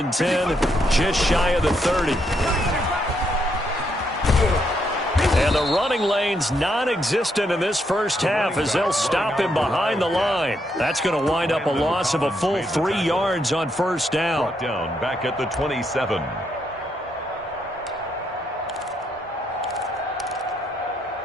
10, just shy of the 30. And the running lane's non-existent in this first half as they'll stop him behind the line. That's going to wind up a loss of a full 3 yards on first down. Brought down back at the 27.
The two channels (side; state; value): both; normal; correlation 0.77